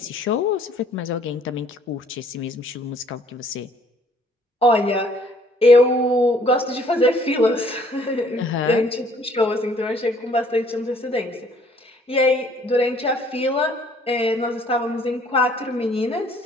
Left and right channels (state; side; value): normal; both; correlation 0.60